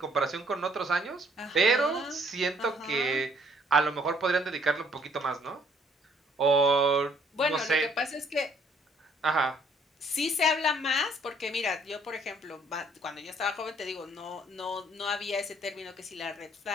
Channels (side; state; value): both; normal; correlation 0.64